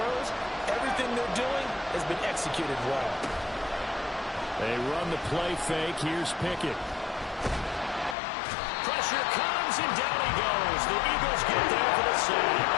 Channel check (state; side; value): drops out; right; at 8.2 s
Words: Everything they're doing has been executed well. They run the play fake. Here's Pickett. Pressure comes, and down he goes. The Eagles get there for the